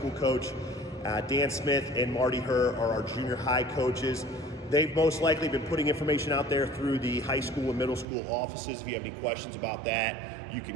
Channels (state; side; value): drops out; left; at 8.1 s